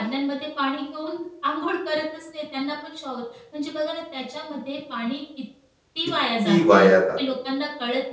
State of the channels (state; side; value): identical; both; correlation 1.00